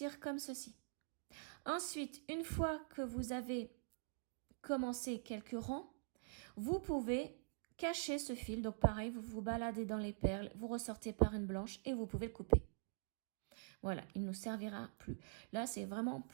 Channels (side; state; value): left; silent; digital silence